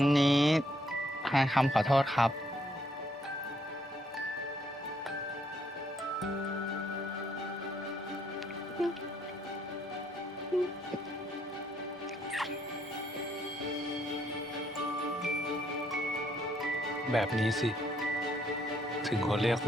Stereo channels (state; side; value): normal; both; correlation 0.71